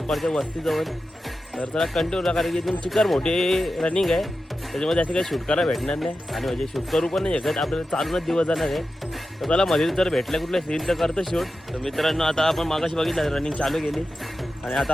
वस्तीजवळ तर चला कंटिन्यू राहा कारण की इथून चिकार मोठी रनिंग आहे त्याच्यामध्ये असं काही शूट करायला भेटणार नाही आणि म्हणजे शूट करू पण नाही शकत आपल्याला चालूनच दिवस जाणार आहे तर त्याला मध्ये जर भेटलं कुठलं सीन तर करतो शूट तर मित्रांनो आता आपण मागाशी बघितलं रनिंग चालू केली आणि आता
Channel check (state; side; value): normal; both; correlation 0.92